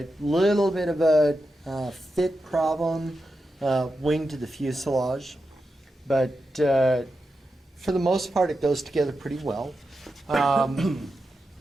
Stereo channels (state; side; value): normal; both; correlation 0.89